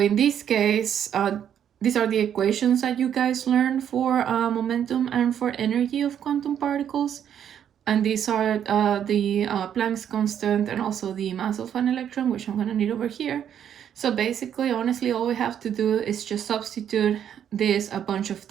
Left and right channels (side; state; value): left; quieter; 9.3 dB